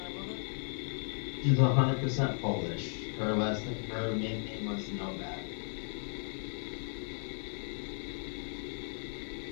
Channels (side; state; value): right; silent; digital silence